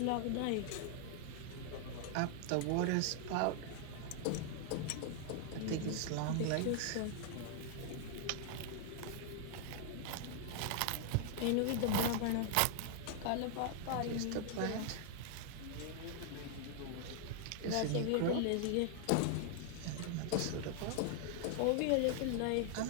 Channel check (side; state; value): both; different; correlation 0.00